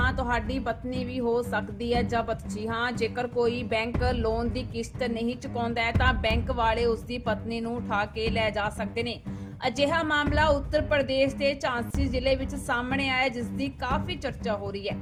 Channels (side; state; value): both; identical; correlation 1.00